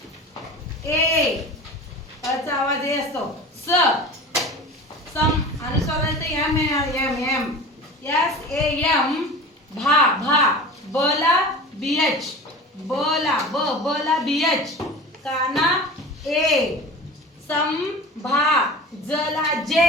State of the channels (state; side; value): normal; both; correlation 0.36